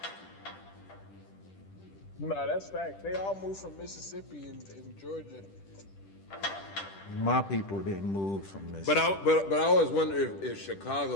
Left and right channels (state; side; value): late; right; 10 ms